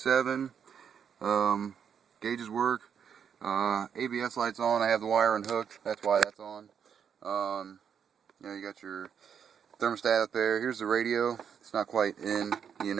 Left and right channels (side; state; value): left; quieter; 7.6 dB